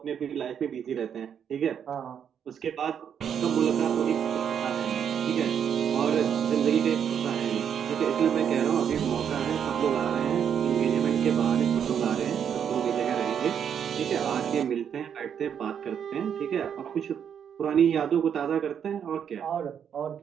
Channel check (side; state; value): left; quieter; 8.2 dB